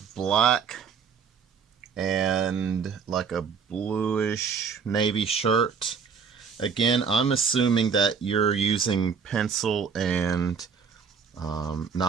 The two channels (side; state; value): left; quieter; 6.2 dB